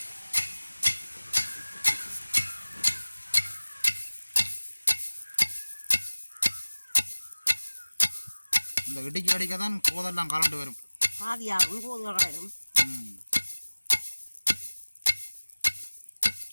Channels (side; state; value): both; inverted; correlation -1.00